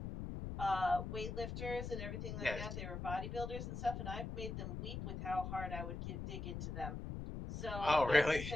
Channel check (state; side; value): noise; left; rumble, 5 dB below the sound